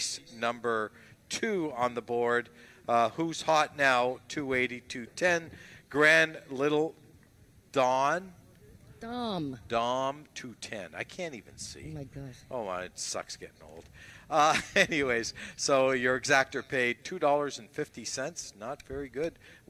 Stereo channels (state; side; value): identical; both; correlation 1.00